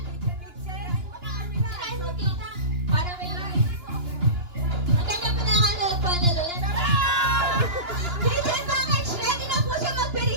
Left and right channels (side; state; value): left; late; 2.9 ms